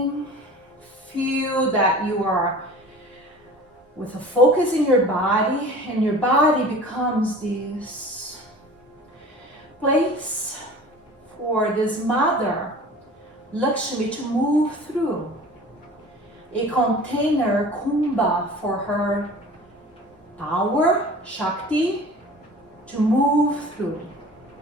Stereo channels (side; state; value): both; normal; correlation 0.42